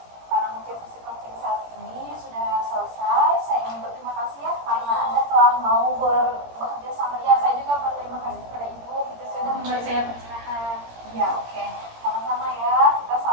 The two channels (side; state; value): left; late; 17 ms